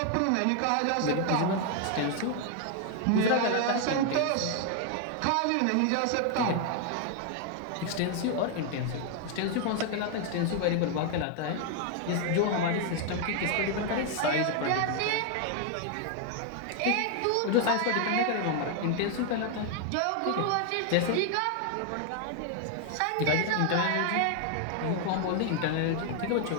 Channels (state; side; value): different; both; correlation 0.00